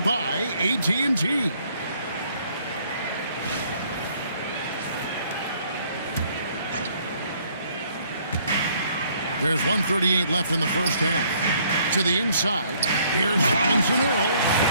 by AT&T. There's 1:38 left in the first half. To the inside. Here's Robinson Earl.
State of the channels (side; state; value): both; inverted; correlation -0.64